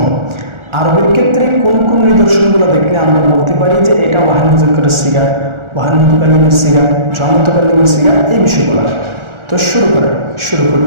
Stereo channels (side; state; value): left; late; 1.4 ms